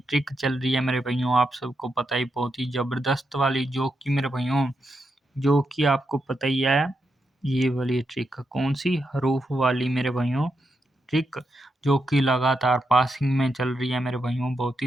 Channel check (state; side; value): normal; both; correlation 0.84